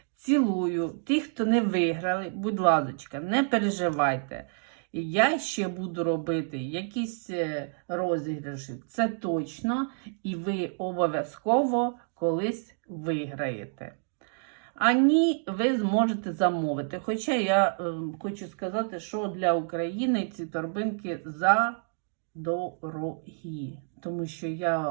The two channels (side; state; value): left; silent; 59 dB below the other